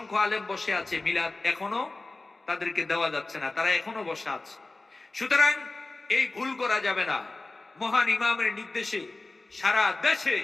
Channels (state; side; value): quieter; right; 3.2 dB